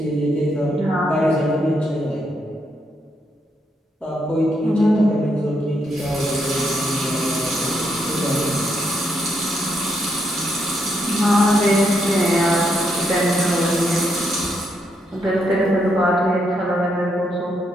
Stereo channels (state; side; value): normal; both; correlation 0.78